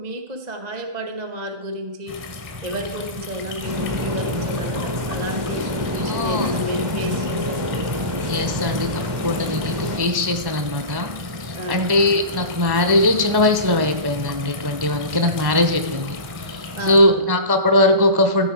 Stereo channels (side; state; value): left; late; 1.1 ms